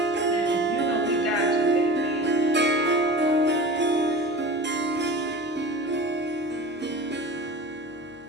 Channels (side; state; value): both; normal; correlation 0.35